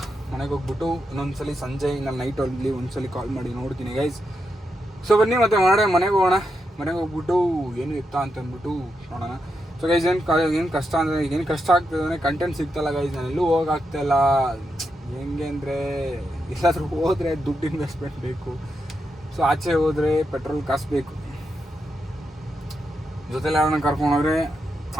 ಮನೆಗೆ ಹೋಗ್ಬಿಟ್ಟು ಇನ್ನೊಂದ್ಸಲಿ ಸಂಜೆ ನಾನು ನೈಟ್ ಅಲ್ಲಿ ಒಂದ್ಸಲಿ ಕಾಲ್ ಮಾಡಿ ನೋಡ್ತೀನಿ ಗೈಸ್. ಸೊ ಬನ್ನಿ ಮತ್ತೆ ಮನೆಗೆ ಹೋಗೋಣ. ಮನೆಗೆ ಹೋಗ್ಬಿಟ್ಟು ಏನು ಇತ್ತಾ ಅಂತ ಅಂದ್ಬಿಟ್ಟು ನೋಡೋಣ. ಸೊ ಗೈಸ್ ಏನು ಕಷ್ಟ ಅಂದರೆ, ಏನು ಕಷ್ಟ ಆಗ್ತದೆ ಅಂದರೆ ಕಂಟೆಂಟ್ ಸಿಗ್ತಲ್ಲ ಗೈಸ್. ನಾನು ಎಲ್ಲೂ ಹೋಗಾಗ್ತಾಯಿಲ್ಲ. ಹೆಂಗೆ ಅಂದರೆ, ಎಲ್ಲಾದರೂ ಹೋದರೆ ದುಡ್ಡು ಇನ್ವೆಸ್ಟ್ಮೆಂಟ್ ಬೇಕು. ಸೊ ಆಚೆ ಹೋದರೆ ಪೆಟ್ರೋಲ್ ಕಾಸು ಬೇಕು, ಜೊತೆಲಿ ಯಾರನ್ನ ಕರ್ಕೊಂಡೋದ್ರೆ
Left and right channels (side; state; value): both; normal; correlation 0.85